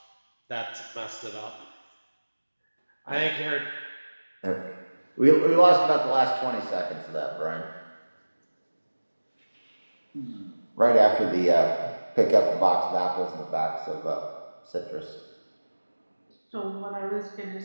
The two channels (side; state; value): both; inverted; correlation -1.00